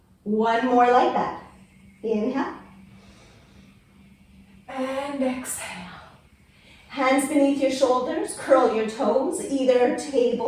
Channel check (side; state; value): both; identical; correlation 1.00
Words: 1 more like that. Inhale. And exhale. Hands beneath your shoulders, curl your toes, either